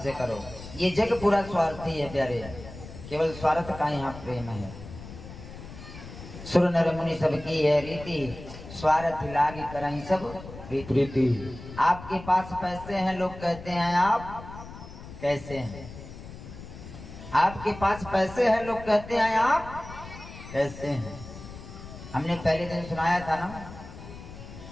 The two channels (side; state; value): left; noise; rumble, 14 dB below the sound